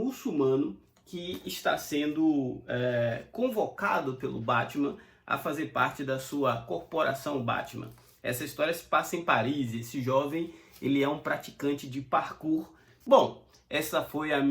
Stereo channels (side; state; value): both; identical; correlation 1.00